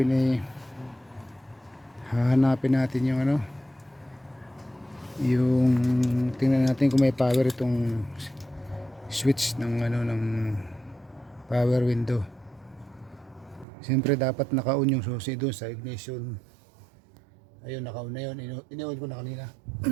ay hahanapin natin yung yung tingnan natin kung may power itong switch ng ng power window. Siyempre dapat naka-on yung susi doon sa ignition. Ayun, naka-on na yun. Ini-on ko na kanina.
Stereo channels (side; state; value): left; drops out; at 13.7 s